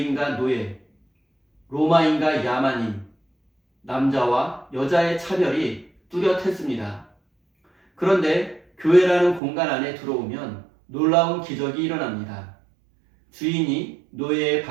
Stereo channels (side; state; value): left; drops out; at 9.4 s